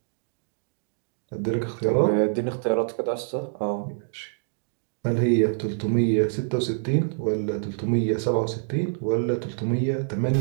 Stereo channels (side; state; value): left; silent; digital silence